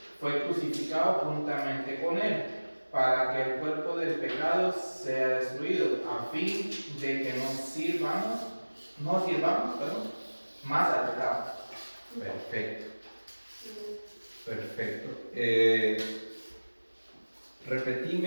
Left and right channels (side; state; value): both; inverted; correlation -1.00